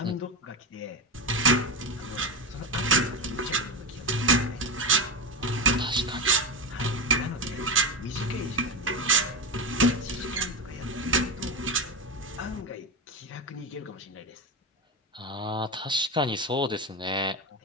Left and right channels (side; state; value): both; normal; correlation 0.17